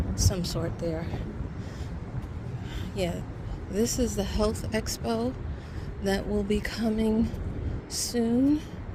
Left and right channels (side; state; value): both; identical; correlation 1.00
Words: sort there. Yeah, this is the health expo that will be coming soon